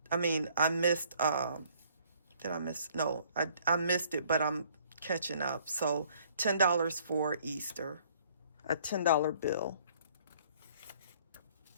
I mean, I missed, did I miss? No, I missed it, but I'm catching up. So $10 for Easter, a $10 bill.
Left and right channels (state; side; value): inverted; both; correlation -0.60